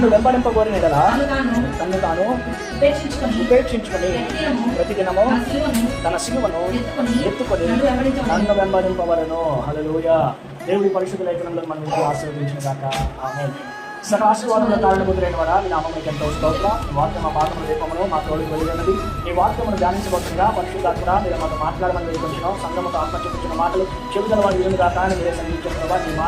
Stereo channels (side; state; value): both; identical; correlation 1.00